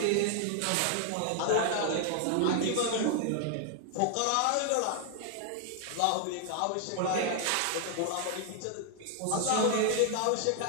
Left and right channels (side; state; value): both; different; correlation 0.00